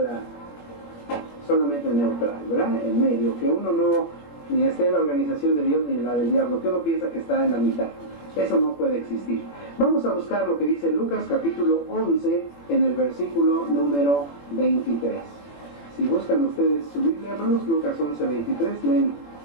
solamente neutral, ¿verdad? En medio, que uno no ni esté en la organización de Dios ni en la del diablo, que uno piensa que está en la mitad. Eso no puede existir. Vamos a buscar lo que dice Lucas capítulo 11 en el versículo número 23. Si buscan ustedes su Biblia, hermanos, Lucas 11, 23, leen:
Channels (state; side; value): late; right; 21 ms